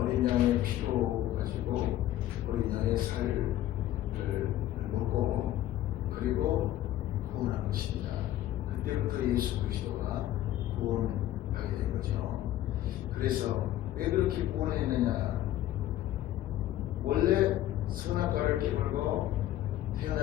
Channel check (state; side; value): quieter; right; 13.4 dB